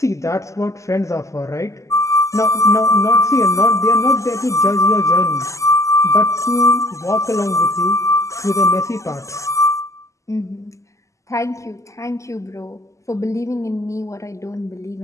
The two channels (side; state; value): right; late; 0.15 ms